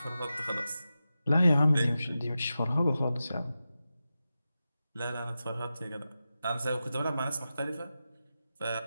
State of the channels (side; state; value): both; inverted; correlation -0.92